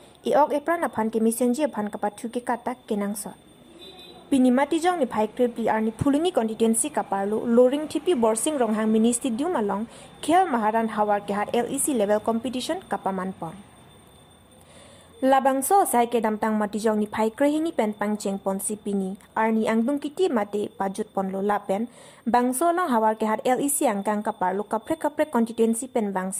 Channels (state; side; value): identical; both; correlation 1.00